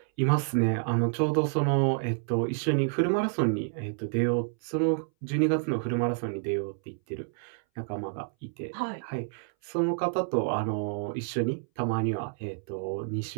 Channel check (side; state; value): left; silent; 59 dB below the other